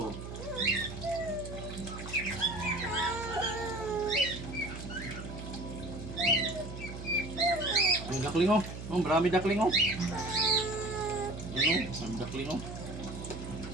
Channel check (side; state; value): right; noise; hum, 9 dB below the sound